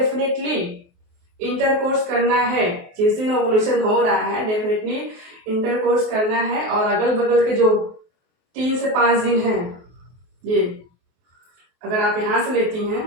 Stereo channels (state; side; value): late; left; 23 ms